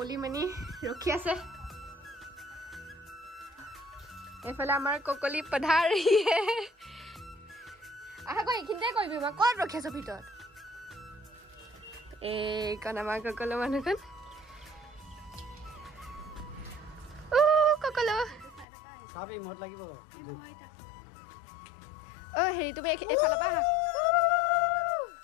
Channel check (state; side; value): drops out; right; at 18.7 s